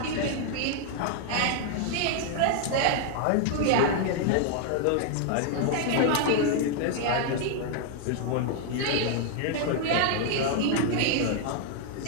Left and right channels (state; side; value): different; both; correlation 0.00